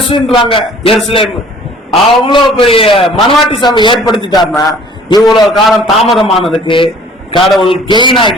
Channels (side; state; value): both; normal; correlation 0.52